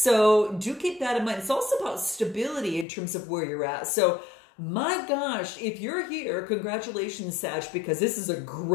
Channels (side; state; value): right; drops out; at 2.9 s